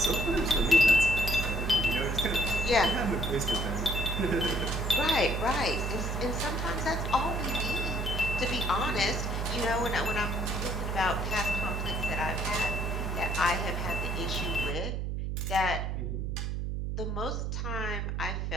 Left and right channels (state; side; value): noise; right; hum, 2 dB below the sound